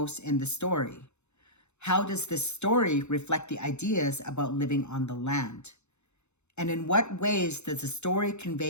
in the story? How does this story reflect the ideas about living on the land? And in what ways does the story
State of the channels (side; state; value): right; late; 0.82 ms